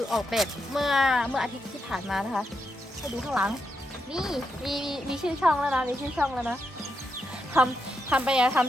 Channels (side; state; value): both; normal; correlation 0.83